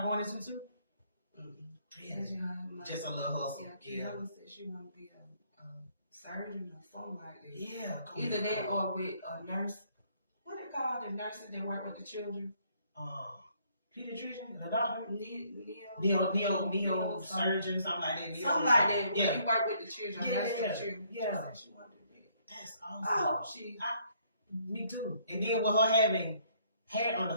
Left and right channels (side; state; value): both; inverted; correlation -0.66